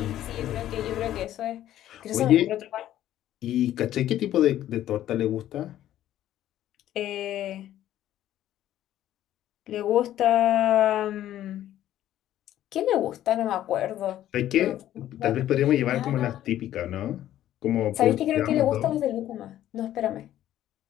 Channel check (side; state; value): right; quieter; 12.5 dB